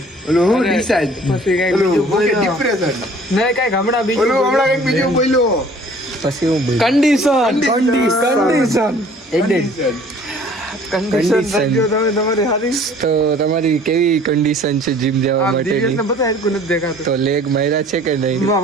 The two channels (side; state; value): both; normal; correlation 0.52